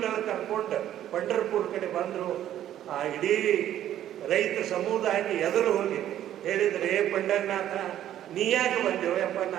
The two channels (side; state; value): left; quieter; 11.7 dB